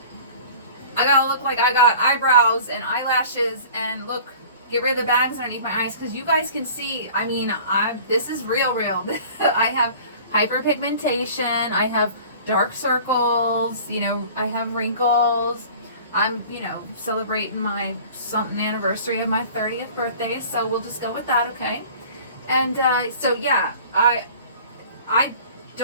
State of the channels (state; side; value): inverted; both; correlation -0.45